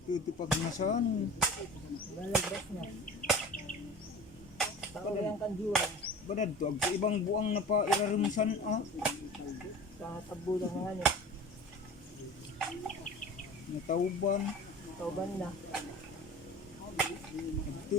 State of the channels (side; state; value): both; normal; correlation 0.37